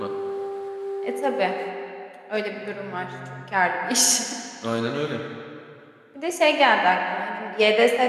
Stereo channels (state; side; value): identical; both; correlation 1.00